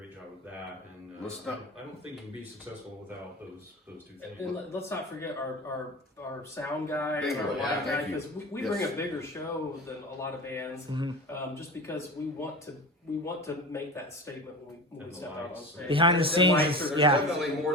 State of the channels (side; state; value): both; normal; correlation 0.31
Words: job with that. And I don't think you can be successful without those two things. And let's not forget our sound guy, Bingo, our yeah, live guy, thank you. because we Yes. bring a bigger show than a lot of bands, just because we want to make that statement when we And the step out on lights. stage. Behind the There's scenes, lights, is- there's yeah. definitely